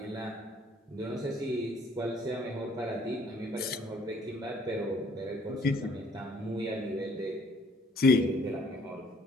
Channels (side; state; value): both; normal; correlation 0.60